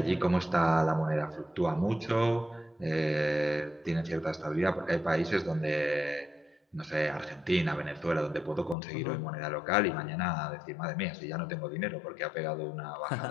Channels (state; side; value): drops out; right; at 8.8 s